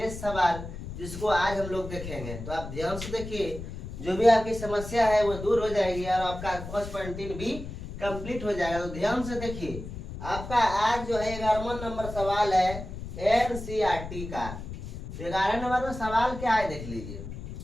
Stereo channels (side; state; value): left; noise; rumble, 9 dB below the sound